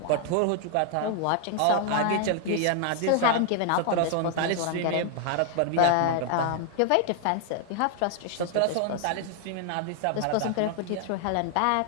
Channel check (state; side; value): different; both; correlation 0.00